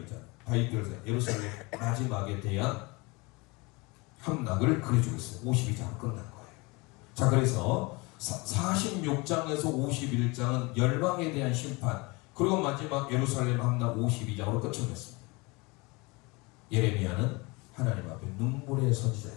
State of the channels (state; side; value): quieter; right; 26.0 dB